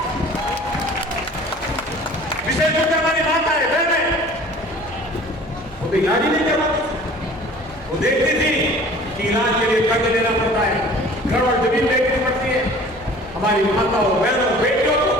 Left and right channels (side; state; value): right; noise; hum, 23 dB below the sound